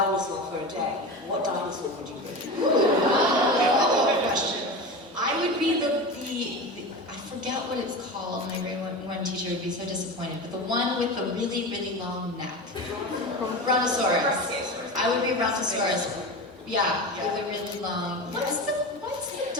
for a day, what dinosaur would you be? Good question. I would be the I forget what it's called. My grade one teacher would be so disappointed, but the one with the really long neck. Brontosaurus. I would be Brontosaurus. Yeah, with a really long. What's the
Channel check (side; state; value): both; normal; correlation 0.27